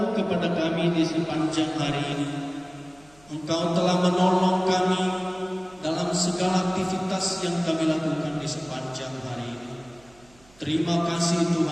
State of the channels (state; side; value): noise; right; hum, 28 dB below the sound